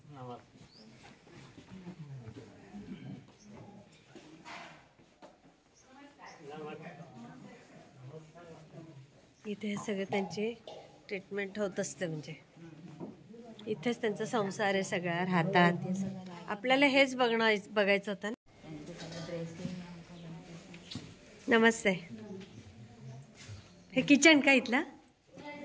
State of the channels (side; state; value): both; identical; correlation 1.00